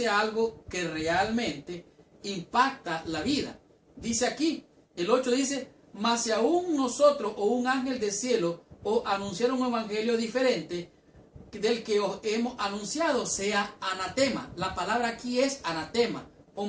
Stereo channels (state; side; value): identical; both; correlation 1.00